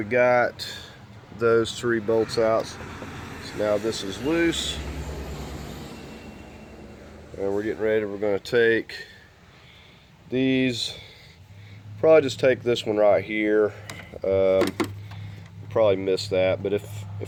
got those 3 bolts out. So now this is loose, and we're getting ready. We're going to take these, probably just take this one right here. Probably missed that, but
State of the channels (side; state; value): both; identical; correlation 1.00